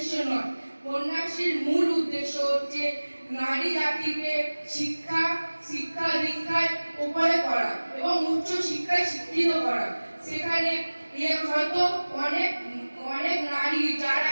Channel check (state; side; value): inverted; both; correlation -1.00